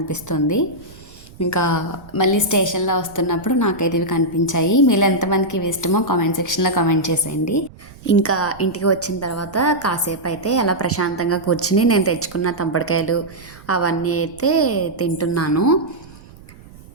ఇంకా మళ్ళీ స్టేషన్లో వస్తున్నప్పుడు నాకైతే ఇవి కనిపించాయి. మీలో ఎంతమందికి ఇవి ఇష్టమో కామెంట్ సెక్షన్లో కామెంట్ చేసేయండి. ఇంకా ఇంటికి వచ్చిన తర్వాత కాసేపు అయితే అలా ప్రశాంతంగా కూర్చుని నేను తెచ్చుకున్న తంపడికాయలు అవన్నీ అయితే తింటున్నాను.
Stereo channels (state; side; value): noise; right; rumble, 21 dB below the sound